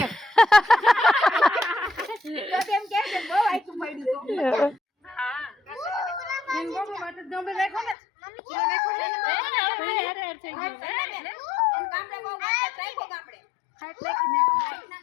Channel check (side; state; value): right; drops out; at 8.0 s